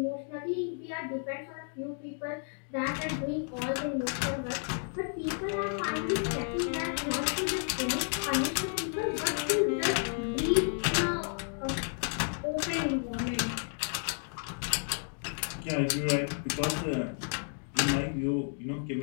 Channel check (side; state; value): right; silent; 56 dB below the other